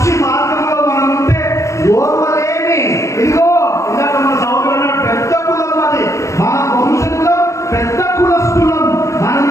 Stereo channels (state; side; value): late; right; 0.15 ms